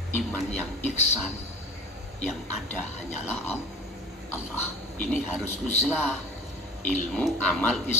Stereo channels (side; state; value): both; normal; correlation 0.42